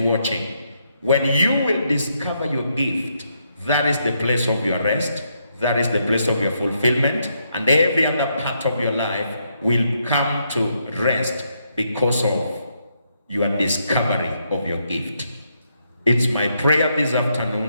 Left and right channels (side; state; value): both; inverted; correlation -0.78